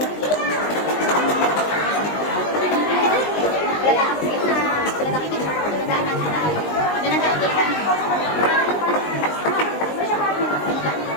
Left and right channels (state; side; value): late; right; 19 ms